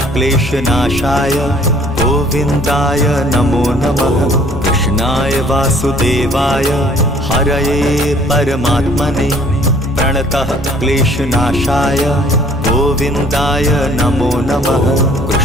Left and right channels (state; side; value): normal; both; correlation 0.57